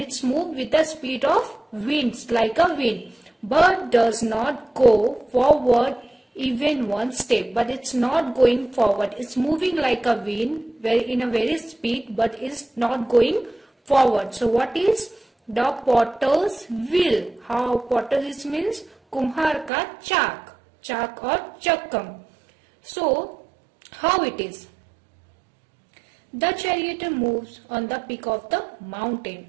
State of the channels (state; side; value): drops out; left; at 19.7 s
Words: moved with the speed of winds like a wind, but does not go forward even one step. But it's not going forward. It's moving like a wind, in a very speed, but it's not going forward. So what is the potter's wheel? How potter's means kumhar ka chak or chakam. So how it is? The charioteer moves on the peak of the mountain.